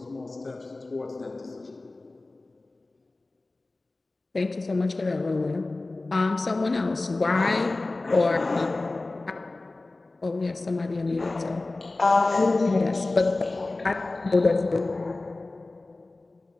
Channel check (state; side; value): quieter; right; 3.1 dB